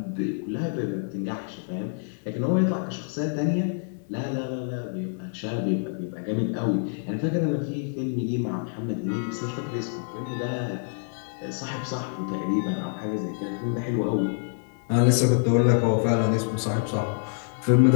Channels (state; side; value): silent; right; digital silence